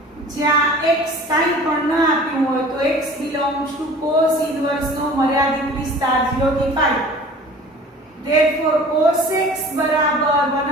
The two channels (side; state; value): both; normal; correlation 0.44